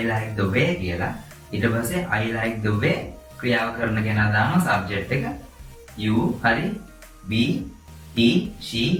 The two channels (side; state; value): both; identical; correlation 1.00